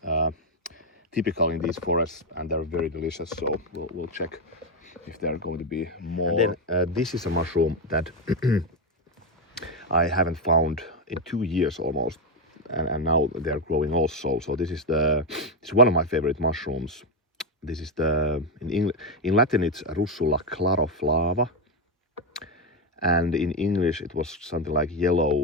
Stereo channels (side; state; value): both; normal; correlation 0.07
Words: typical in these forests, and they're very delicious. So we'll check if there are going to be more. And then this is a mushroom that I haven't found in 2 years almost, and now they're growing also. So this is it's one of my favorite mushrooms. This is in Latin it's Russula claroflava, and in English it was something like